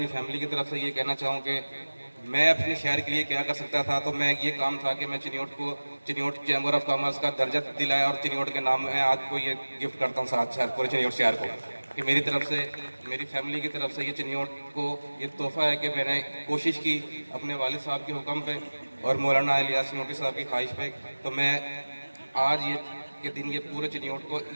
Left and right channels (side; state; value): both; inverted; correlation -1.00